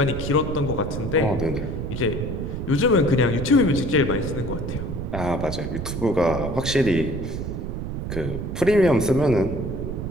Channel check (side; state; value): right; noise; rumble, 5 dB below the sound